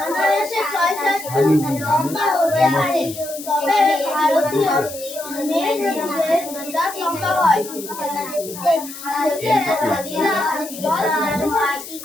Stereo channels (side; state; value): left; noise; hiss, 12 dB below the sound